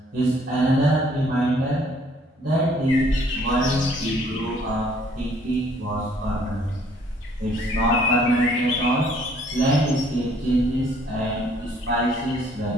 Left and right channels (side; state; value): both; normal; correlation 0.61